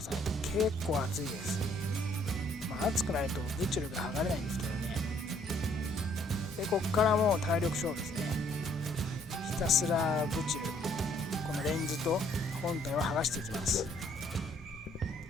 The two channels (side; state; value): both; normal; correlation 0.64